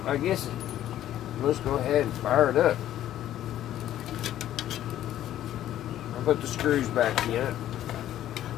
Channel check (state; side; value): quieter; right; 12.3 dB